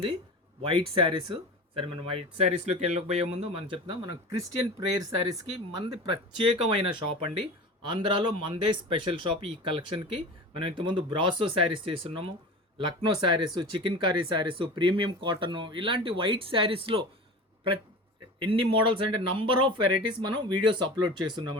వైట్ శారీస్. సరే, మనం వైట్ శారీస్లోకి వెళ్ళకపోయే ముందు మనం చెప్తాం, మనం క్రిస్టియన్ ప్రేయర్ శారీస్కి మనది ప్రత్యేకమైన షాప్ అండి. ఆంధ్రాలో మనదే స్పెషల్ షాప్ ఈ కలెక్షన్కి. మనం ఇంతకుముందు బ్రాసో శారీస్ చేస్తున్నాము, Lucknow saris, chicken curry saris, premium cotton, ఇలాంటి వైట్ శారీస్లో ఎన్ని మోడల్స్ అంటే నంబర్ ఆఫ్ వెరైటీస్ మనం వీడియోస్ అప్లోడ్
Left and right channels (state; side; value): normal; both; correlation 0.33